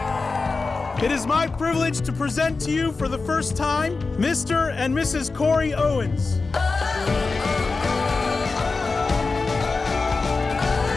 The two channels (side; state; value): right; quieter; 4.0 dB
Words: It is my privilege to present to you for the first time Mr. and Mrs. Cory Owens.